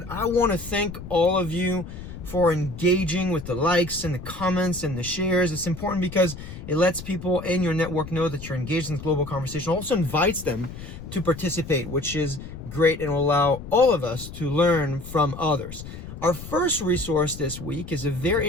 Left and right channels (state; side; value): noise; left; rumble, 12 dB below the sound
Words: I want to thank all of you for engaging with the likes and the comments and the shares. It's important because it lets people in your network know that you're engaged in this global conversation. It also invites them to participate, which is great and will allow all of us to learn from others. Our first resource this week is a very